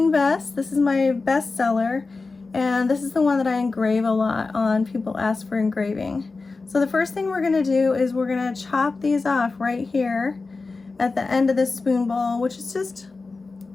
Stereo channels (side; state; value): right; quieter; 3.9 dB